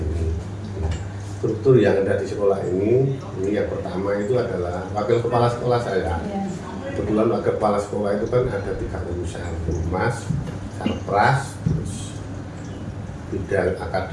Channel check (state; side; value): identical; both; correlation 1.00